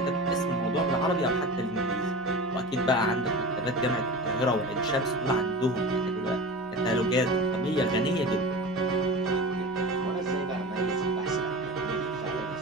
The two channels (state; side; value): noise; left; hum, 28 dB below the sound